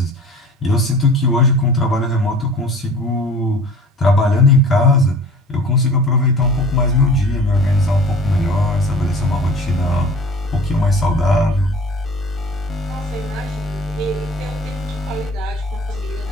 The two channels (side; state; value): both; normal; correlation 0.44